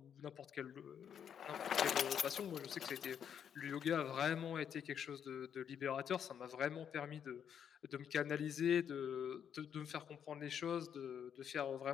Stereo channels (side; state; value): right; quieter; 8.3 dB